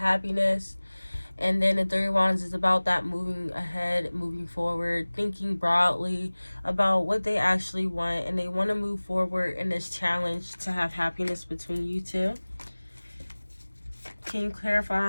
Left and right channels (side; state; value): both; inverted; correlation -1.00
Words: and then the Three of Wands is about that moving ahead, moving forward, thinking broadly about what they actually want, and they want to move forward in this challenge to have happiness between you two. Can you